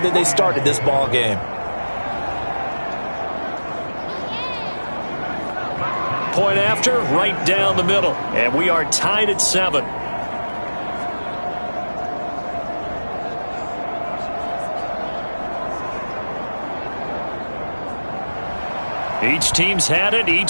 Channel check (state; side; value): inverted; both; correlation -1.00